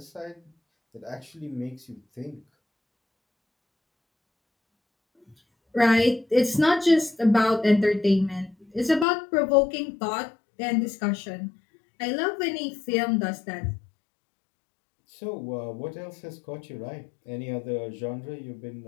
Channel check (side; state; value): right; drops out; at 9.1 s